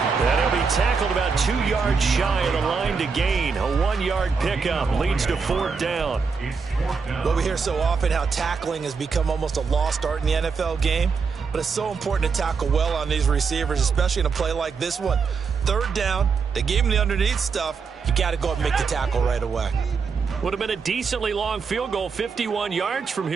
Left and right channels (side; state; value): left; quieter; 5.3 dB